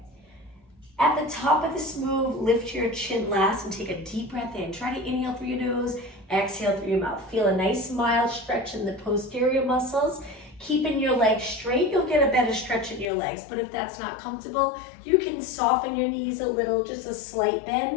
At the top of this move, lift your chin last and take a deep breath in. Try to inhale through your nose, exhale through your mouth. Feel a nice mild stretch in the posterior muscles. Keeping your legs straight, you'll get a better stretch in your legs. But if that's not comfortable, you can soften your knees a little, just a slight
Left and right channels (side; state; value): right; drops out; at 13.1 s